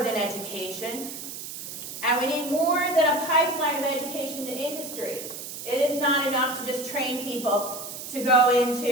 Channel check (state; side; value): noise; right; hiss, 9 dB below the sound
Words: education, and we need more than a pipeline of education to industry. It is not enough to just train people to go